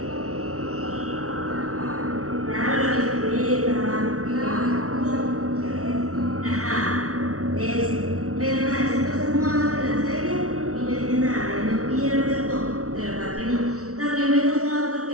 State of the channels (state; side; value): late; left; 0.64 ms